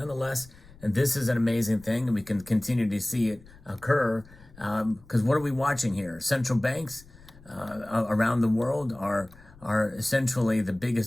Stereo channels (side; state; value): left; noise; rumble, 23 dB below the sound